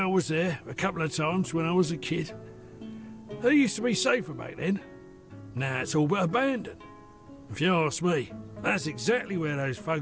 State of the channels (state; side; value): identical; both; correlation 1.00